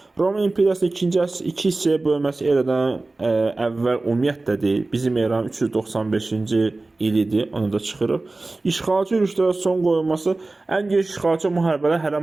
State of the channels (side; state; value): left; quieter; 3.2 dB